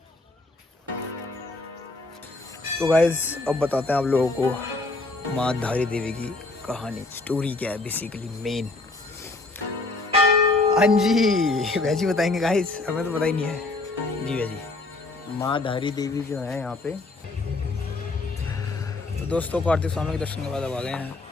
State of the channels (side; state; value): right; quieter; 3.2 dB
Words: तो गाइस अब बताते हैं आप लोगों को माँ धारी देवी की कहानी, स्टोरी क्या है बेसिकली मेन। हाँ जी वैसी बताएंगे गाइस, हमें तो पता ही नहीं है जी। वैसी माँ धारी देवी जो है यहाँ पे, तो दोस्तों कार्तिक स्वामी के दर्शन के बाद अब आ गए हैं